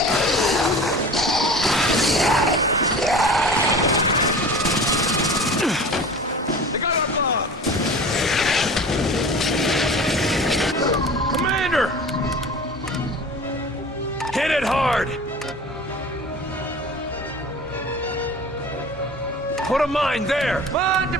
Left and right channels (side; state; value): both; normal; correlation 0.39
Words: They got our bomb! Commander! Hit it hard! Put a mine there! Mine